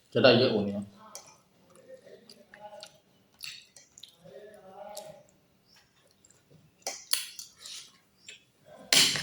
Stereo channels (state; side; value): identical; both; correlation 1.00